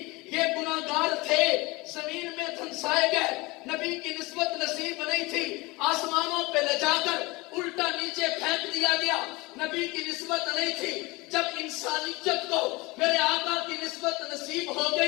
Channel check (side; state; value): right; quieter; 23.6 dB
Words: یہ گناہگار تھے، زمین میں دھنسائے گئے، نبی کی نسبت نصیب نہیں تھی، آسمانوں پہ لے جا کر الٹا نیچے پھینک دیا گیا، نبی کی نسبت نہیں تھی۔ جب انسانیت کو میرے آقا کی نسبت نصیب ہو